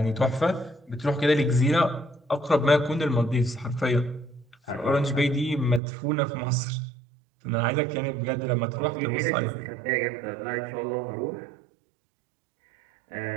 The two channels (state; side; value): drops out; left; at 5.8 s